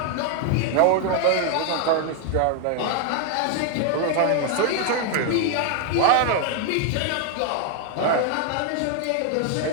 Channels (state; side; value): different; both; correlation 0.00